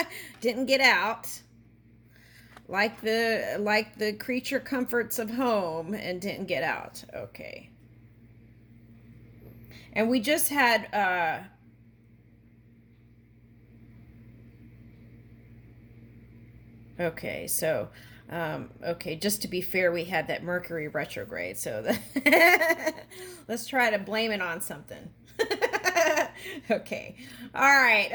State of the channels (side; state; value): both; identical; correlation 1.00